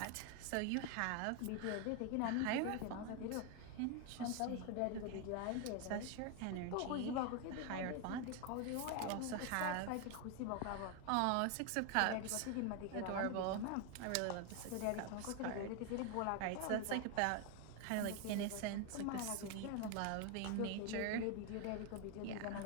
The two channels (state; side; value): different; both; correlation 0.01